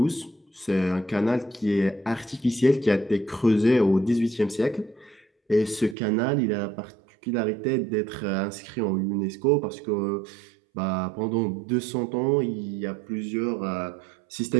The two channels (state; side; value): drops out; left; at 6.0 s